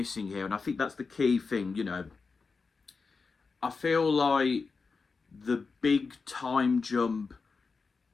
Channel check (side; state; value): right; quieter; 4.6 dB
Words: here. And I think that's the key thing, you know. I feel like the big time jump